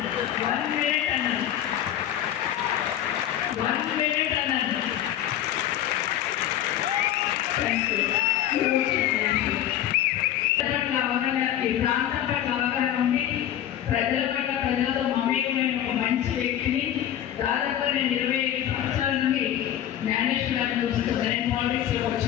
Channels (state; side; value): quieter; right; 11.4 dB